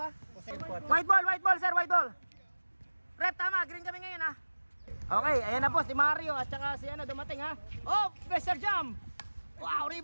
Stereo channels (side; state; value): both; inverted; correlation -1.00